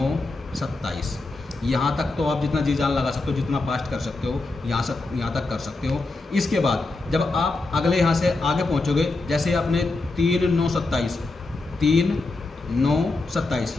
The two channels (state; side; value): quieter; right; 3.3 dB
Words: 27, यहाँ तक तो आप जितना जी जान लगा सकते हो, जितना फास्ट कर सकते हो यहाँ तक कर सकते हो। इसके बाद जब आप अगले यहाँ से आगे पहुँचोगे, जैसे आपने 3 9 27 3 9 27